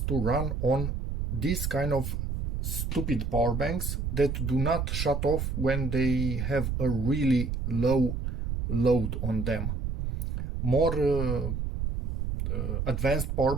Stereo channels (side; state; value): right; noise; rumble, 2 dB below the sound